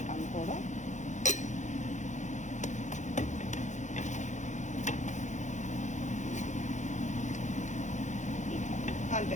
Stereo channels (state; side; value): late; right; 0.35 ms